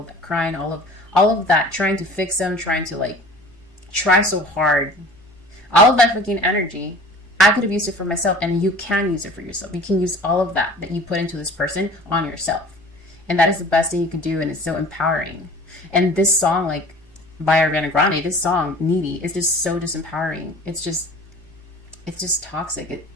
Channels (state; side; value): normal; both; correlation 0.44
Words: of that crying, all of that trying to fix them, trying to, like, try so hard, all of that freaking energy, I could have used it for myself, and you can use it for yourself. You can use all of that you put into this person on yourself. And that is the best thing you can do, and it's so empowering. And this song, like, by Ariana Grande, this song, Needy, is just so disempowering. It's just toxic.